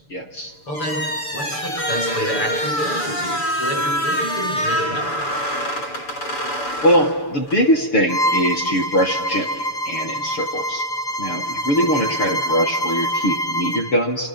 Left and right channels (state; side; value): late; right; 6.9 ms